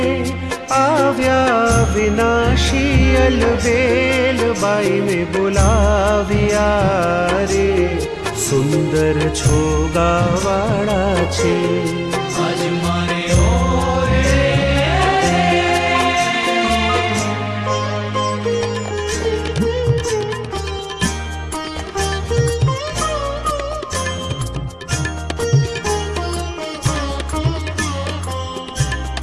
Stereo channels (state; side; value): identical; both; correlation 1.00